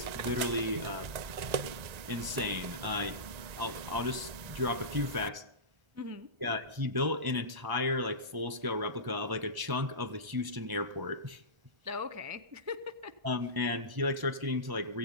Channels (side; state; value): left; late; 1.1 ms